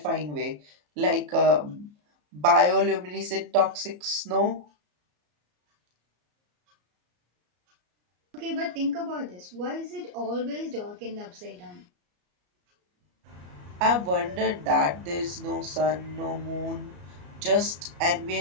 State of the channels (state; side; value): late; left; 34 ms